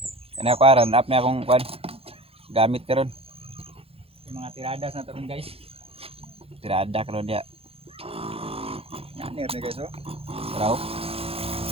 Kaya ako aran up na akong kuan. Gamit karon. Yung mga tiradas na taron guys. Tirada karon dia. Nanir na guys oh. Raw.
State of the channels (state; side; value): late; left; 0.28 ms